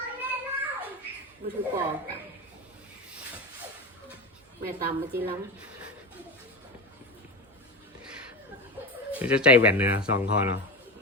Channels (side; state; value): both; normal; correlation 0.22